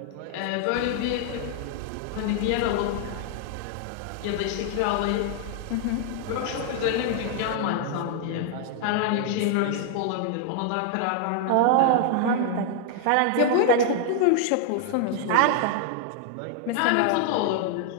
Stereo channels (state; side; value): different; both; correlation 0.00